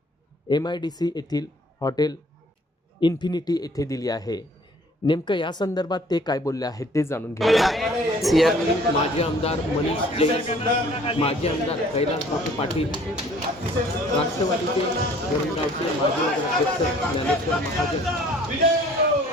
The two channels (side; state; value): both; normal; correlation 0.55